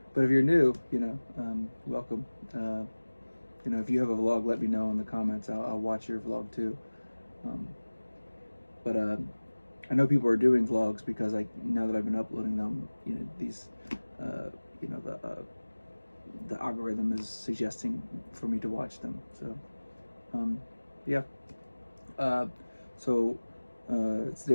But if you're new, welcome. If you have a vlog, let me know in the comments. I'll watch your vlog too. But I know people are doing vlogs because now that I've been uploading them, these, the algorithm is suggesting for me to watch them. So, yeah. It's the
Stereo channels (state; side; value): inverted; both; correlation -1.00